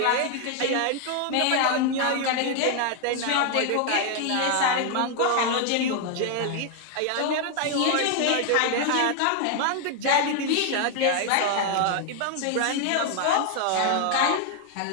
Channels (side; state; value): both; different; correlation 0.00